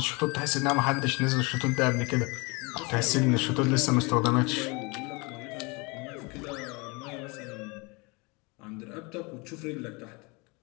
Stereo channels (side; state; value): right; quieter; 28.3 dB